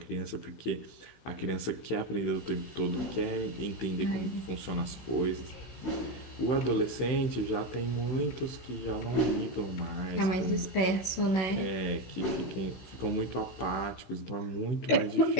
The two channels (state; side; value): late; right; 16 ms